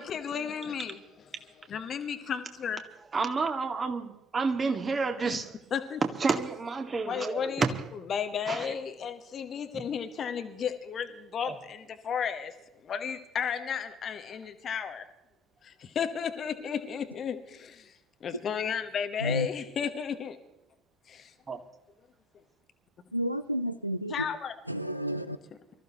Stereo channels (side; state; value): both; normal; correlation 0.53